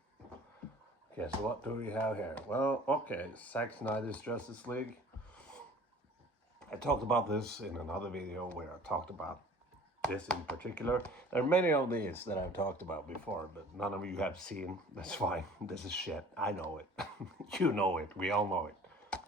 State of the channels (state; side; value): normal; both; correlation 0.48